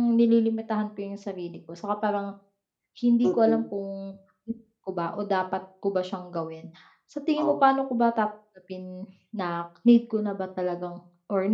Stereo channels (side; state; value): both; identical; correlation 1.00